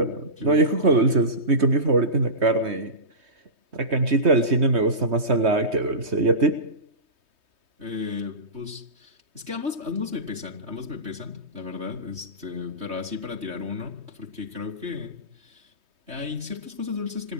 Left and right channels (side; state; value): left; late; 3.2 ms